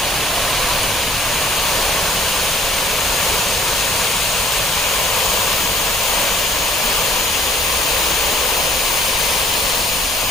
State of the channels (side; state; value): both; normal; correlation 0.61